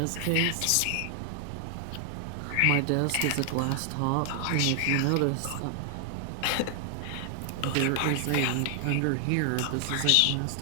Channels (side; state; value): both; different; correlation 0.00